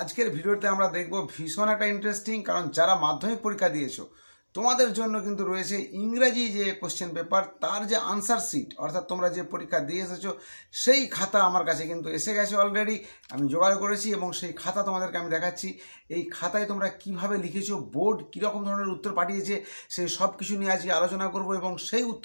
ভিডিওতে আমরা দেখব ভীষণ একটা ইন্টারেস্টিং, কারণ যারা মাধ্যমিক পরীক্ষা দিয়েছো তোমাদের জন্য কিন্তু রয়েছে ইংরেজি যে কোশ্চেন পেপার, তার যে আনসার শিট, অর্থাৎ তোমরা যে পরীক্ষা দিয়ে এসেছো সেই খাতা আমার কাছে কিন্তু এসে গেছে অলরেডি। আমি জোগাড় করেছি এবং সেই খাতা তোমাদেরকে আমি দেখাচ্ছি। এই খাতায় তোমরা কিভাবে লিখেছো, বোর্ড কীরকম ধরনের উত্তর পাঠিয়েছে, সেই সব কিছু নিয়ে আজকে আলোচনা করব এবং সেই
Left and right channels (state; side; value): inverted; both; correlation -1.00